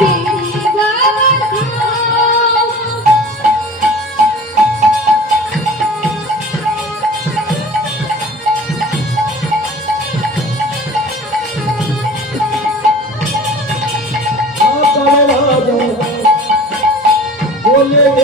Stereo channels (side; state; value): both; normal; correlation 0.40